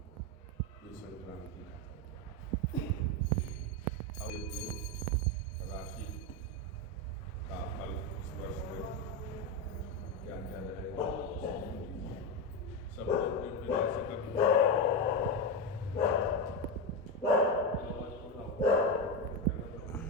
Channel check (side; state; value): both; normal; correlation 0.12